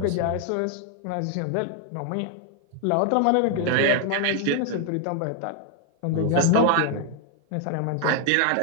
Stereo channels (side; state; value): both; different; correlation 0.00